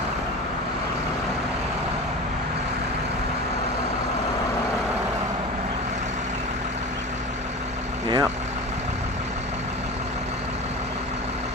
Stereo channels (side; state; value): both; normal; correlation 0.32